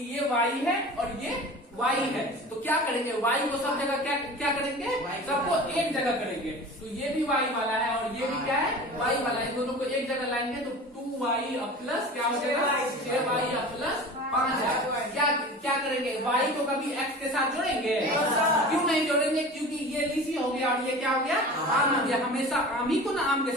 ये y है और ये y है, तो क्या करेंगे, y को सब जगह क्या करेंगे, सबको एक जगह करेंगे। तो ये भी y वाला है और ये भी क्या है, y वाला है। दोनों को एक जगह लाएंगे तो 2y प्लस क्या हो जाएगा, 6y प्लस 5 है। क्या करेंगे, y को कभी x के साथ जोड़ेंगे, क्यों नहीं जोड़ेंगे, क्योंकि ये लीची हो गया और ये क्या हो गया, आम हो गया। हमेशा आम ही को ना आम के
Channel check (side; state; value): both; normal; correlation 0.37